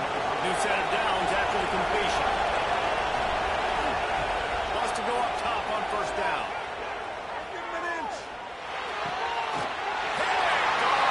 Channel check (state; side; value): identical; both; correlation 1.00